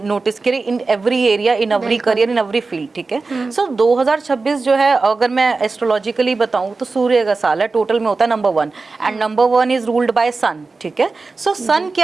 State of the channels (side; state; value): left; quieter; 4.0 dB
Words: नोटिस किया in every area, in every career, in every field. ठीक है, सो 2026 जो है अगर मैं एस्ट्रोलॉजिकली बताऊं तो सूर्य का साल है, टोटल में होता है number 1, and number 1 is ruled by sun. ठीक है, सो सन